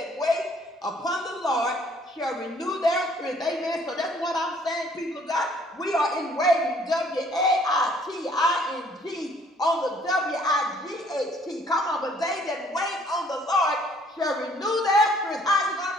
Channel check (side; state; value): both; normal; correlation 0.61